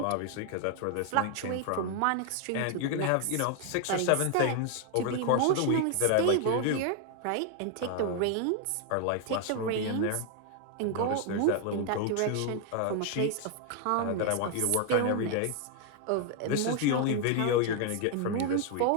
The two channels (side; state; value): both; different; correlation 0.00